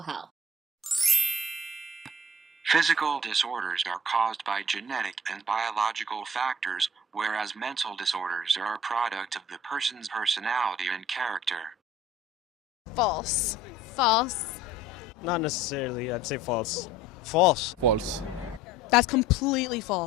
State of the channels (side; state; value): both; normal; correlation 0.50